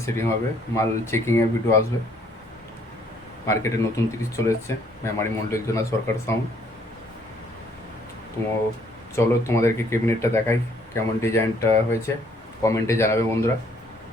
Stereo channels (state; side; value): normal; both; correlation 0.64